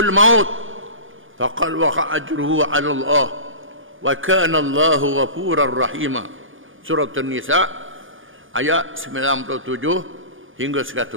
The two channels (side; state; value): left; late; 0.58 ms